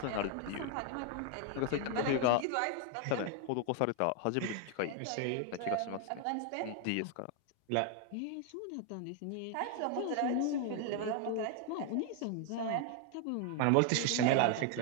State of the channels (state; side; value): different; both; correlation 0.00